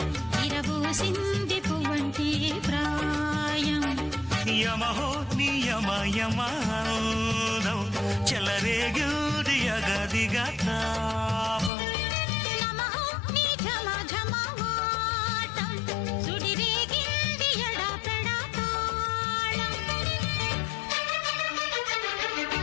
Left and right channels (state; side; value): drops out; right; at 11.7 s